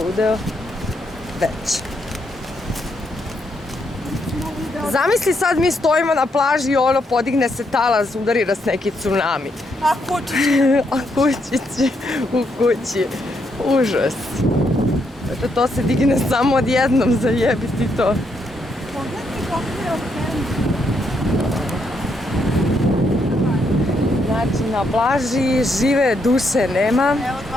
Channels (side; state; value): both; normal; correlation 0.77